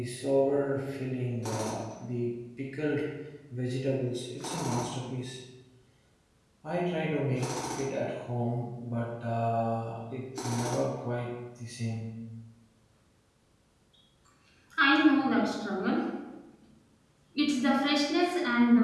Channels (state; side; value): identical; both; correlation 1.00